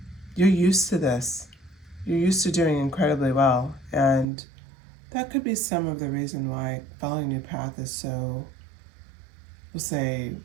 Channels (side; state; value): left; drops out; at 4.2 s